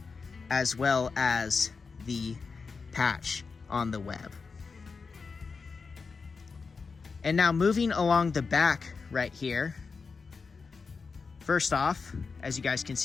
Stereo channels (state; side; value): quieter; right; 4.9 dB